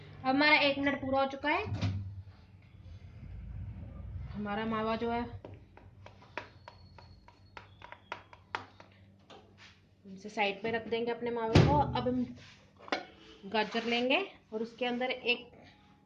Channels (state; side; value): identical; both; correlation 1.00